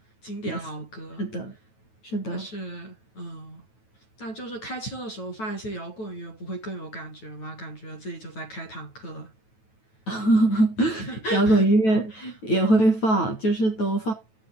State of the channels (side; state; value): right; late; 9.2 ms